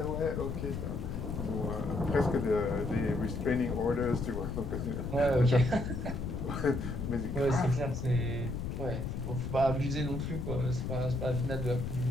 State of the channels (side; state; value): left; noise; rumble, 4 dB below the sound